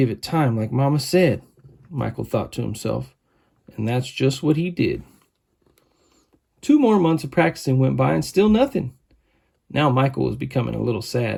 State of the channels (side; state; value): both; identical; correlation 1.00